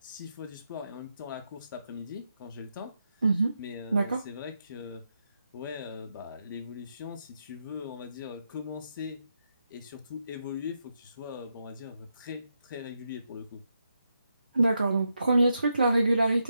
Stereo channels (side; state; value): both; inverted; correlation -0.83